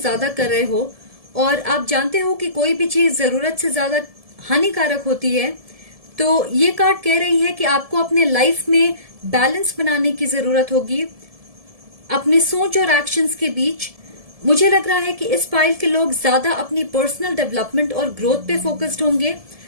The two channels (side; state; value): left; late; 1.7 ms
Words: कर रहे हो, और आप जानते हो कि कोई भी चीज जरूरत से ज्यादा हानिकारक होती है। तो ये कार्ड कह रही है कि आपको अपने लाइफ में बैलेंस बनाने की जरूरत होगी अपनी सोच और एक्शंस के बीच। मुझे लग रहा है कि इस फाइल के लोग ज्यादा अपनी पर्सनल डेवलपमेंट और ग्रोथ पे फोकस्ड होंगे।